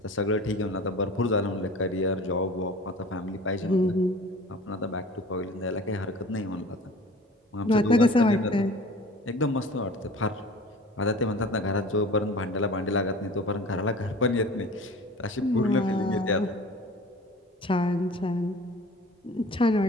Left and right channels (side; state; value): both; normal; correlation 0.42